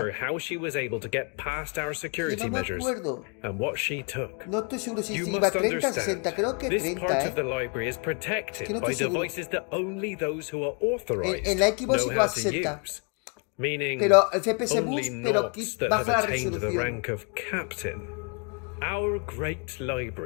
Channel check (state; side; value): quieter; right; 36.4 dB